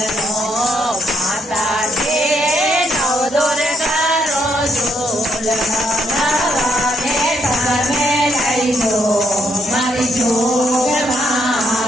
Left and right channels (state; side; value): normal; both; correlation 0.74